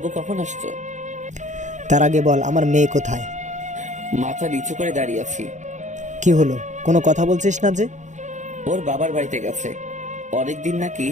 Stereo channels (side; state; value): left; late; 0.35 ms